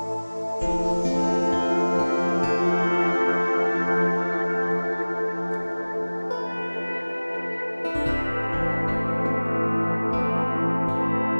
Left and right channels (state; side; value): inverted; both; correlation -1.00